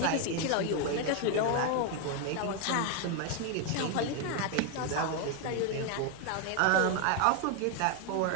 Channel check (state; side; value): different; both; correlation 0.01